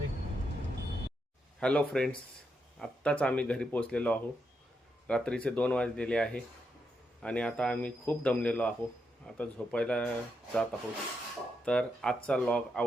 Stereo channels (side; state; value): both; normal; correlation 0.82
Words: हॅलो फ्रेंड्स, आत्ताच आम्ही घरी पोचलेलो आहोत. रात्रीचे 2 वाजलेले आहे आणि आता आम्ही खूप दमलेलो आहोत. आता झोपायला जात आहोत. तर आजचा व्लॉग